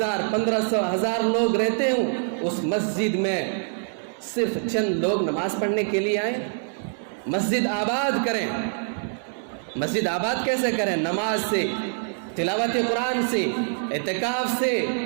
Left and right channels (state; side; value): silent; left; digital silence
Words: 1500 1000 لوگ رہتے ہوں، اس مسجد میں صرف چند لوگ نماز پڑھنے کے لیے آئیں۔ مسجد آباد کریں۔ مسجد آباد کیسے کریں؟ نماز سے، تلاوت قرآن سے، اعتکاف سے،